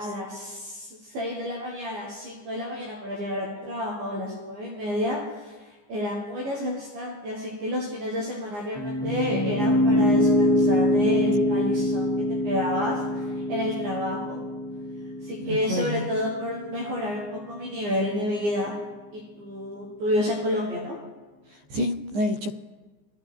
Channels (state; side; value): late; left; 15 ms